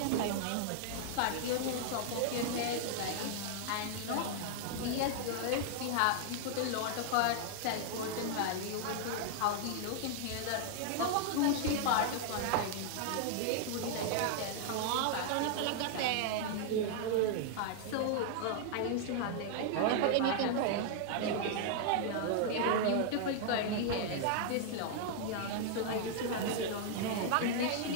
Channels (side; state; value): both; different; correlation 0.00